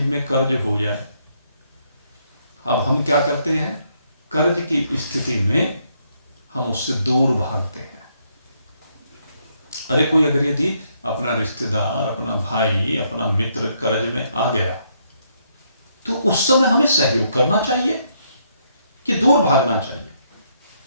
कर्ज हो जाए, अब हम क्या करते हैं, कर्ज की स्थिति में हम उससे दूर भागते हैं। अरे कोई अगर यदि अपना रिश्तेदार, अपना भाई, अपना मित्र कर्ज में आ गया तो उस समय हमें सहयोग करना चाहिए कि दूर भागना चाहिए?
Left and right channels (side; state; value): both; inverted; correlation -0.73